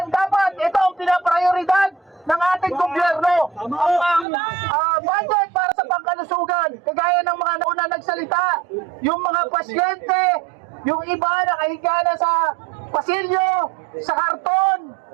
dapat ito ang pinaprioridad ng ating gobyerno. Ang budget para sa pangkalusugan, kagaya ng mga nauna nagsalita, yung mga pasyente, yung iba na kahiga na sa pasilyo, sa karton,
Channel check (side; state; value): left; drops out; at 4.2 s